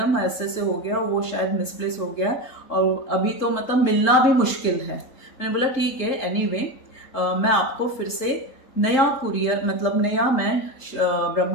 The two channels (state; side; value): late; right; 3.8 ms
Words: ऐसे ऐसे हो गया, वो शायद मिसप्लेस हो गया है और अभी तो मतलब मिलना भी मुश्किल है। मैंने बोला ठीक है एनीवे, मैं आपको फिर से नया कुरियर मतलब नया मैं